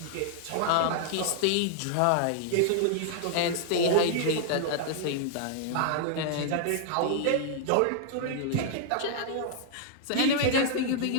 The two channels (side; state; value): both; different; correlation -0.01